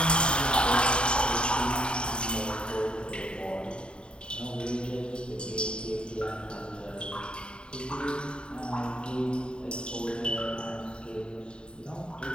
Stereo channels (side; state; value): right; late; 0.052 ms